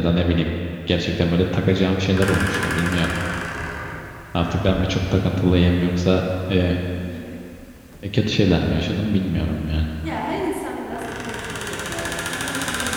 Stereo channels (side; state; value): both; identical; correlation 1.00